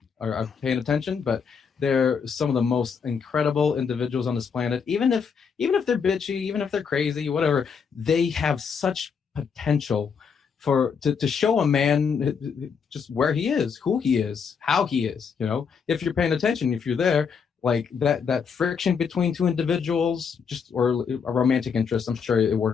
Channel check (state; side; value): quieter; right; 6.3 dB